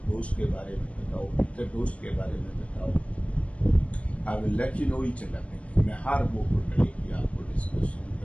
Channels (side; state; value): right; late; 0.063 ms